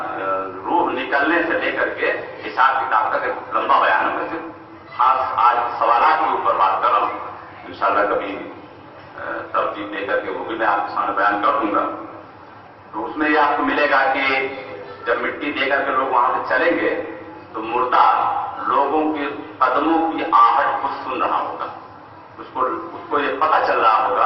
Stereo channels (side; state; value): both; identical; correlation 1.00